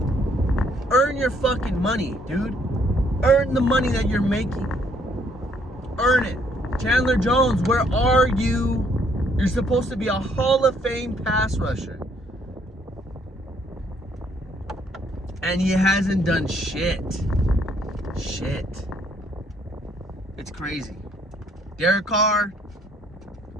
Earn your fucking money, dude. Earn the money that you're making. Earn it. Chandler Jones, where are you? You're supposed to be a Hall of Fame pass rusher. And he hasn't done shit. It's crazy. Derek Carr,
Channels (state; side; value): normal; both; correlation 0.67